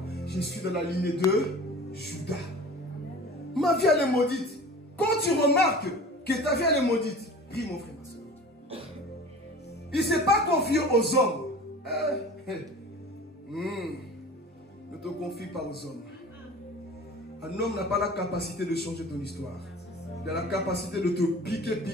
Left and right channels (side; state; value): both; normal; correlation 0.40